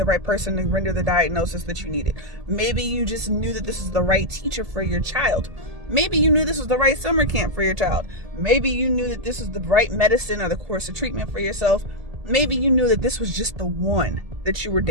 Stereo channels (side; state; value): left; late; 1.7 ms